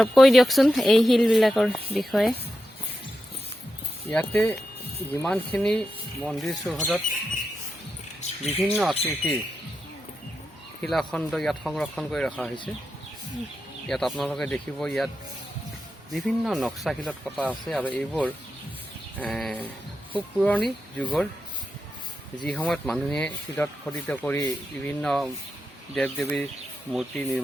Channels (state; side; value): normal; both; correlation 0.88